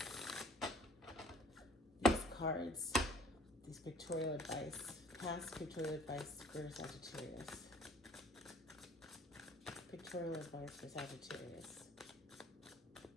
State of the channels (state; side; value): normal; both; correlation 0.53